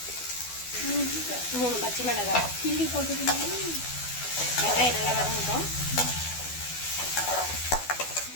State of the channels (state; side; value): late; right; 12 ms